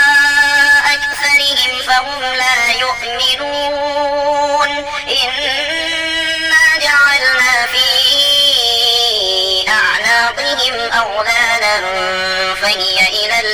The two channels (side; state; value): left; noise; rumble, 24 dB below the sound